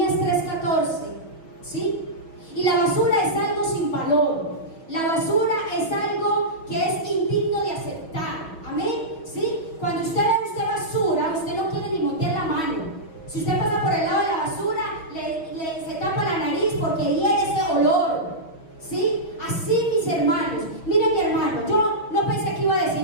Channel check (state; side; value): late; right; 6.3 ms